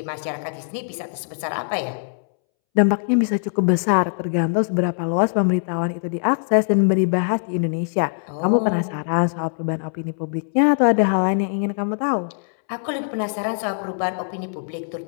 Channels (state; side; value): silent; right; 64 dB below the other